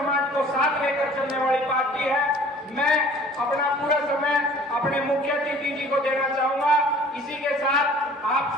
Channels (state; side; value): normal; both; correlation 0.50